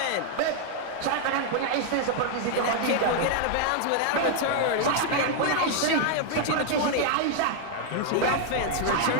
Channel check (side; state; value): both; different; correlation 0.00